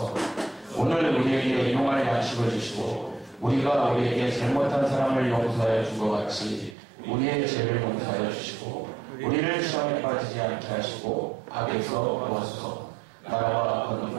오늘 우리에게 일용할 양식을 주시고 우리가 우리에게 잘못한 사람을 용서하여 준 것 같이 우리의 죄를 용서하여 주시고 우리를 시험에 빠지지 않게 하시고 악에서 구하소서. 나라와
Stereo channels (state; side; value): drops out; left; at 6.8 s